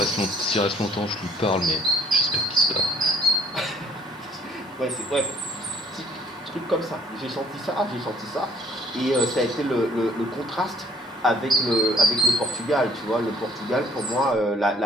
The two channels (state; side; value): normal; both; correlation 0.57